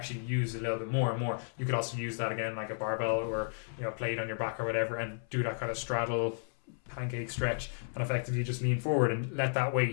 use a little bit more and more. You could also use that again, like a barbell or plate on your back or whatever, and do that kind of straddle pancake stretch, and effectively just lean forward and let that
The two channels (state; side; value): silent; right; 56 dB below the other